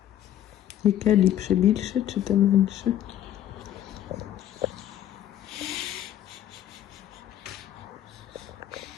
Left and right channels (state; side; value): quieter; right; 11.6 dB